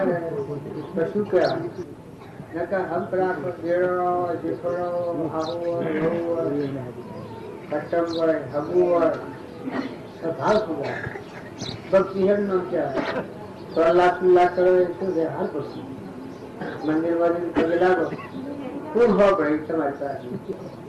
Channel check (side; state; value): both; identical; correlation 1.00